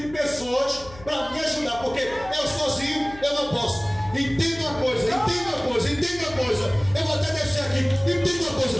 de pessoas para me ajudar, porque eu sozinho eu não posso. Entenda uma coisa. Eu vou até descer aqui. Entenda uma coisa.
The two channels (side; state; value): left; noise; hum, 18 dB below the sound